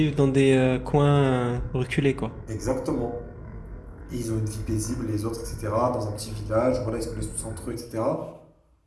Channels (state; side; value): identical; both; correlation 1.00